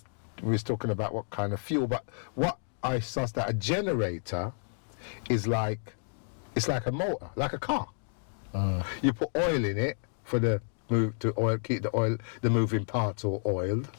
we was talking about what kind of fuel, but what I sussed that a generator is like, it's like a motor, like a car. You put oil in it for the move to oil, keep the moving parts all oiled.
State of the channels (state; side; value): silent; right; digital silence